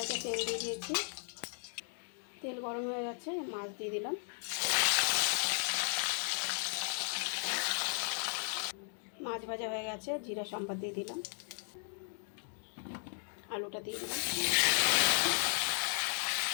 তেল দিয়ে দিয়েছি, তেল গরম হয়ে গেছে, মাছ দিয়ে দিলাম। মাছ ভাজা হয়ে গেছে, জিরা সম্বাদ দিয়ে দিলাম, আলুটা দিয়ে দিলাম,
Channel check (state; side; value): silent; right; 54 dB below the other